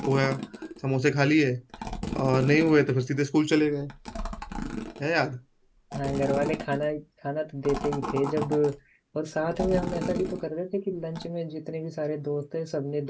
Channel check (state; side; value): identical; both; correlation 1.00